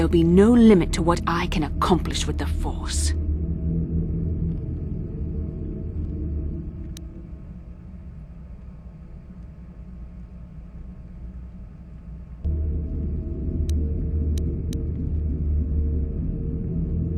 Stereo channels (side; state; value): both; identical; correlation 1.00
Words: be no limit to what I can accomplish with the Force.